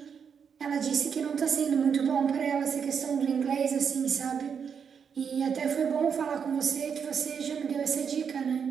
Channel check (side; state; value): left; quieter; 6.9 dB